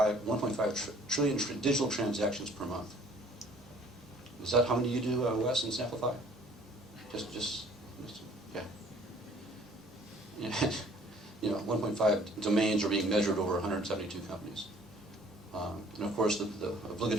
trillion digital transactions per month. Is that how many you do, Wes, in Samplify? Just yeah. You know, 1.5 domains are being measured over 172 companies. And of course, the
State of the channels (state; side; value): normal; both; correlation 0.56